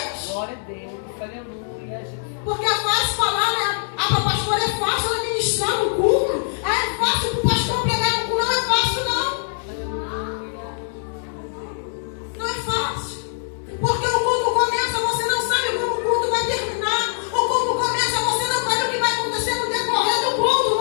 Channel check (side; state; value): right; silent; digital silence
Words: Glória a Deus, aleluia. Porque é fácil falar, né? Para a pastora é fácil ela ministrar no culto. É fácil para o pastor pregar no culto. Não é fácil, não. Não é fácil. Porque o culto começa, você não sabe como o culto vai terminar. O culto começa, você não sabe o que vai acontecer no decorrer do culto.